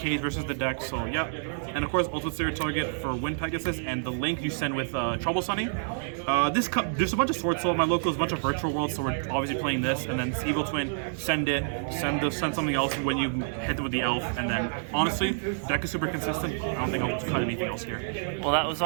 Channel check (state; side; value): silent; left; digital silence